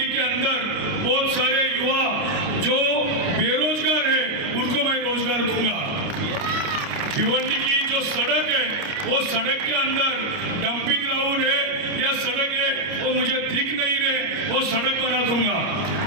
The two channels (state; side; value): late; left; 29 ms